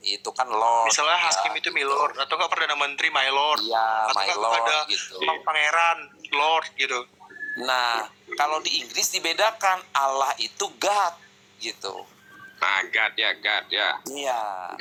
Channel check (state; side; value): identical; both; correlation 1.00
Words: itu kan Lord. Misalnya hakim itu milord, atau nggak perdana menteri my lord, atau my lord ada gitu. pangeran lord gitu. Nah, kalau di Inggris dibedakan, Allah itu God gitu. Nah, God ya. Iya.